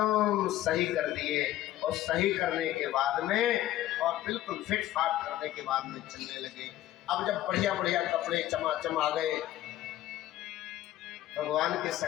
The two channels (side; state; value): right; quieter; 14.1 dB